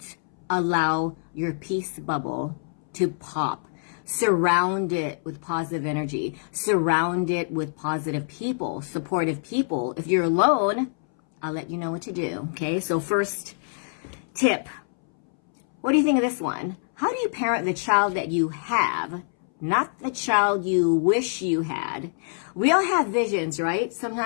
allow your peace bubble to pop. Surround it with positive energy. Surround it with positive people, supportive people. If you're alone, I'll let you know what to do. Okay, so first tip. What do you think of this one? How do you parent the child that you have, not the child you wish you had? We all have visions, right?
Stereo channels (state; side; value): silent; right; 61 dB below the other